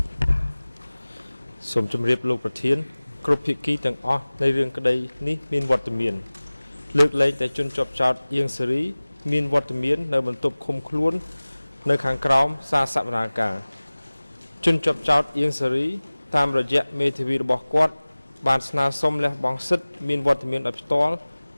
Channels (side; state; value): both; inverted; correlation -0.99